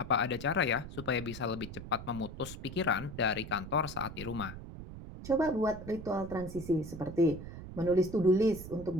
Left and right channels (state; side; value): noise; right; rumble, 11 dB below the sound